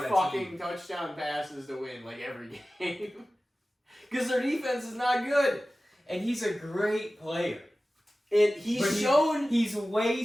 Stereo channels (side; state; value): both; normal; correlation 0.96